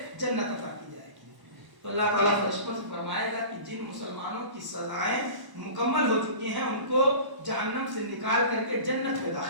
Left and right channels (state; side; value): late; left; 1.0 ms